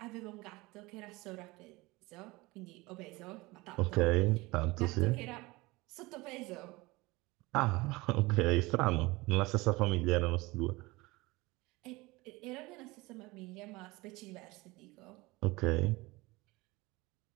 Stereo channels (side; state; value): left; quieter; 22.3 dB